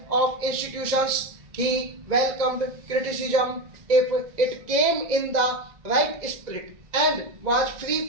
of institutions. He welcomed criticism if it came in the right spirit and was free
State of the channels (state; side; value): late; left; 2.0 ms